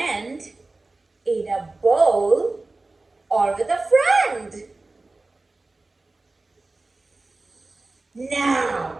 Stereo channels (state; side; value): quieter; left; 3.3 dB